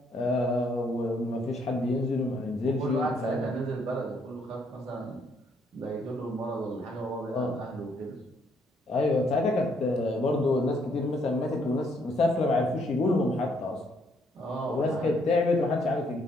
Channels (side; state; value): both; normal; correlation 0.70